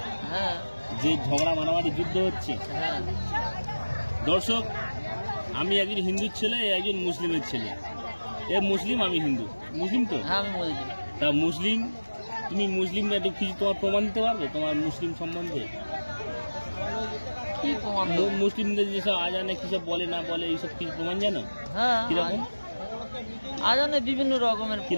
যে ঝগড়া মারামারি যুদ্ধ হচ্ছে। দর্শক, আমি একজন হিন্দুর ছেলে, একজন মুসলিমের ছেলে। এ মুসলিম, আমি হিন্দু। মুসলিম তো? তা মুসলিম, তুমি মুসলিম একটু কিছু তোমার প্রমাণ দিতে পারবে তোমার মুসলিম সম্বন্ধে? মুসলিমদের যেসব আজানে কিসব বলে না বলে এইসব কিছু প্রমাণ জানো? কিরকম আজানে বিভিন্ন রকমের,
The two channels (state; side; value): inverted; both; correlation -1.00